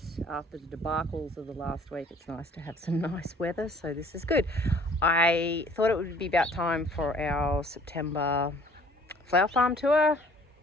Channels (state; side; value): normal; both; correlation 0.54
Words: after the debacles of the last week, it's nice to have some nice weather, so this is good. I thought it would be about time for our September flower farm tour.